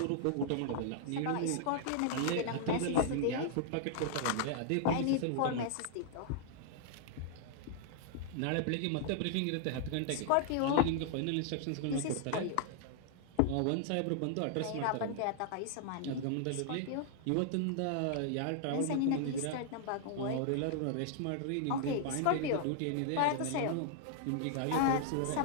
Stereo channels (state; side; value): different; both; correlation 0.00